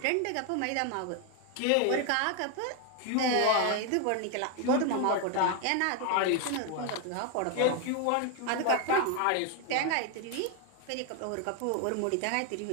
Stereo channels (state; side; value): different; both; correlation 0.01